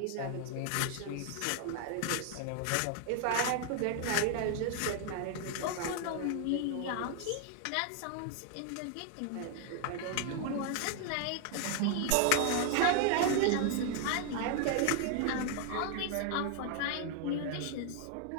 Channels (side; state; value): both; different; correlation 0.00